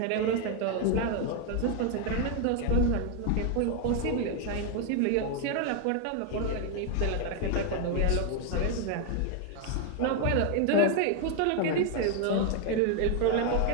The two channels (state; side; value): different; both; correlation 0.01